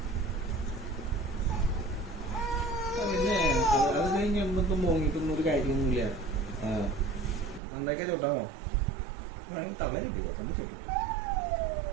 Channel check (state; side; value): drops out; left; at 7.6 s